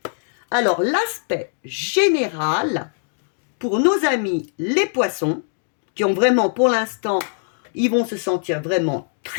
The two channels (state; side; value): silent; right; digital silence